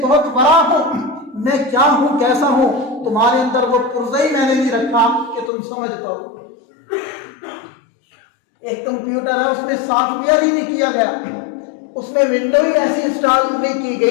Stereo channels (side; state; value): right; drops out; at 5.5 s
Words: بہت بڑا ہوں، میں کیا ہوں کیسا ہوں، تمہارے اندر وہ پرزئی میں نے نہیں رکھا کہ تم سمجھ پاؤ۔ ایک کمپیوٹر ہے، اس میں سافٹ ویئر ہی نہیں کیا گیا، اس میں ونڈو ہی ایسی انسٹال نہیں کی